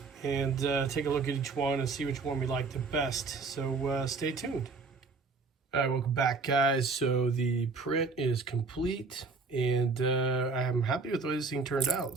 and take a look at each one and see which one we like the best. So stay tuned. All right, welcome back, guys. So the print is complete, and I'm happy with the way this thing turned out.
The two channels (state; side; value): quieter; left; 4.3 dB